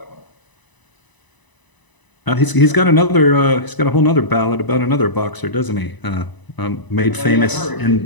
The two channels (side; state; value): right; late; 1.0 ms